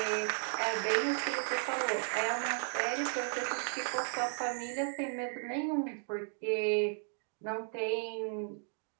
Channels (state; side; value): silent; left; 54 dB below the other